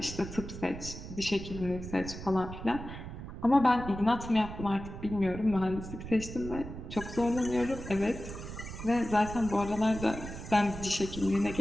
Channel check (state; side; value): noise; right; rumble, 10 dB below the sound